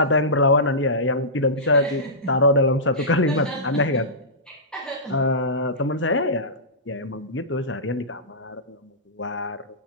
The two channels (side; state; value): both; normal; correlation -0.19